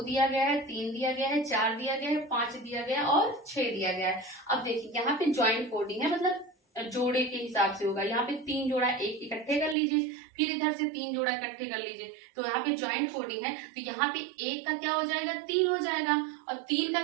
दिया गया है, 3 दिया गया है, 4 दिया गया है, 5 दिया गया है और 6 दिया गया है। अब देखिए यहाँ पे ज्वाइंट कोडिंग है, मतलब जोड़े के हिसाब से होगा। यहाँ पे 3 जोड़ा एक इकट्ठे कर लीजिए, फिर इधर से 3 जोड़ा इकट्ठे कर लीजिए, तो यहाँ पे ज्वाइंट कोडिंग है। तो यहाँ पे 1 का क्या हो जाएगा, 3 हो जाएगा, और 3 का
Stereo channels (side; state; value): left; drops out; at 9.8 s